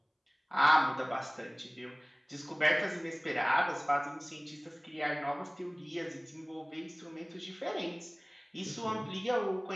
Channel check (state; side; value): identical; both; correlation 1.00